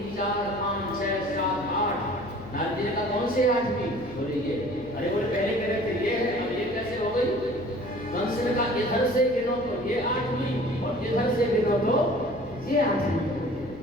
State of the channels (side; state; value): left; noise; hum, 17 dB below the sound